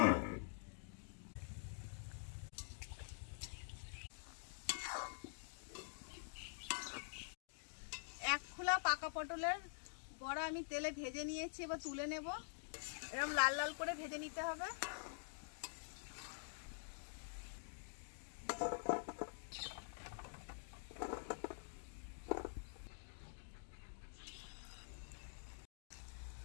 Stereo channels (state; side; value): silent; right; digital silence